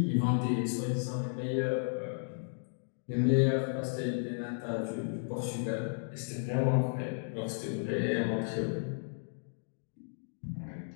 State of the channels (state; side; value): silent; right; digital silence